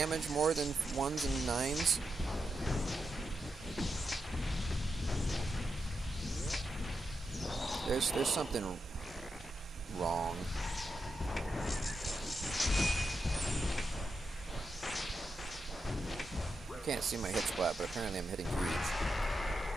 more than 1s and 9s? There's something wrong. I can't see my hit splat, but apparently I'm hitting huge.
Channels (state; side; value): normal; both; correlation 0.86